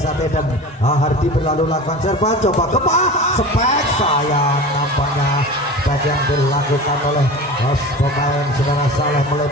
dan Hardi berlalu lakukan serban, coba spek sayang, nampaknya spek yang dilakukan oleh pemain saudara Saleh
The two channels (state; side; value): normal; both; correlation 0.34